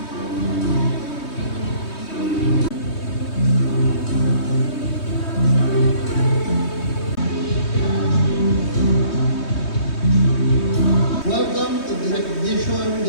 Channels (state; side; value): late; right; 3.2 ms